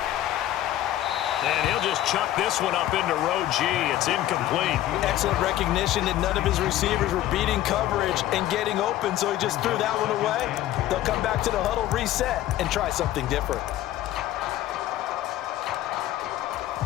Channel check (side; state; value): right; quieter; 13.7 dB